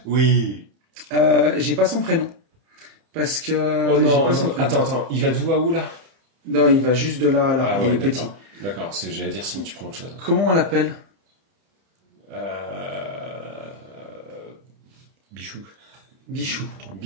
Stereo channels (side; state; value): left; late; 30 ms